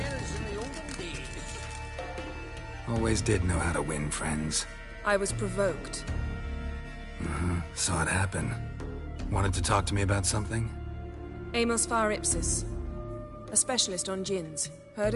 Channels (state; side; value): identical; both; correlation 1.00